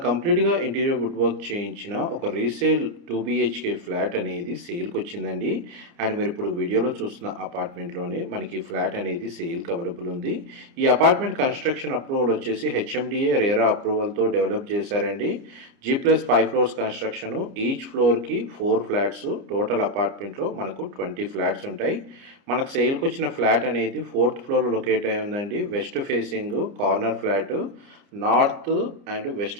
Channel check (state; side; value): late; left; 29 ms